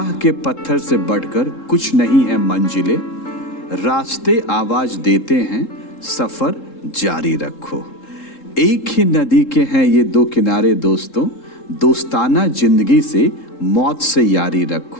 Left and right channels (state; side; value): late; right; 3.7 ms